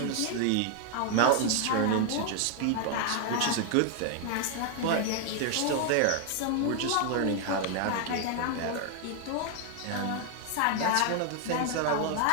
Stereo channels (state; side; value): different; both; correlation 0.00